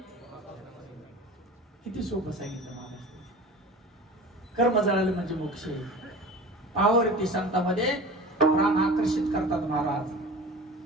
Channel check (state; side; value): normal; both; correlation 0.37